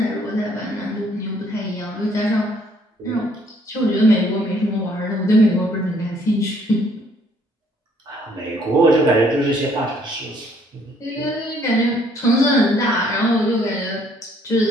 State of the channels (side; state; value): both; normal; correlation 0.64